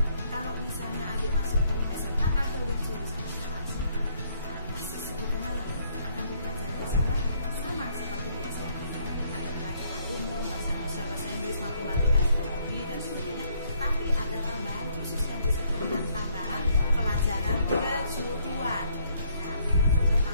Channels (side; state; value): both; inverted; correlation -0.68